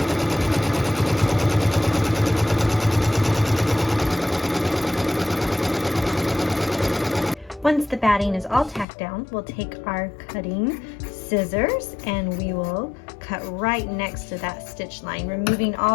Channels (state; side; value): drops out; right; at 8.8 s